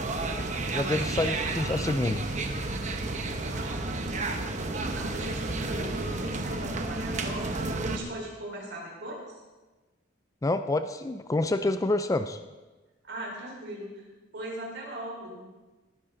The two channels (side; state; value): both; normal; correlation 0.56